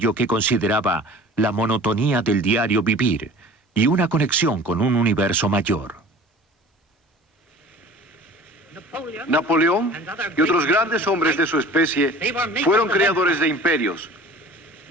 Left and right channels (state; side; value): normal; both; correlation 0.43